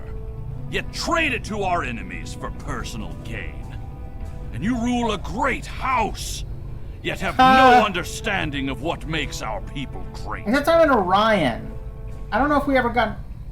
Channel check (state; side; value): identical; both; correlation 1.00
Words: yet trade it to our enemies for personal gain. And you rule a great house, yet have no understanding of what makes our people great. Except I'm in Orion. I don't know if we ever got...